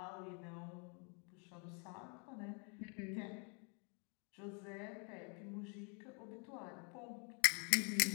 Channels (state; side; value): quieter; right; 37.3 dB